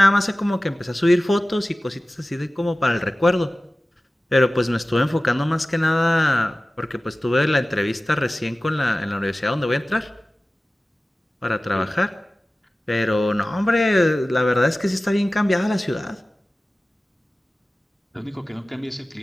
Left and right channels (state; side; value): normal; both; correlation 0.96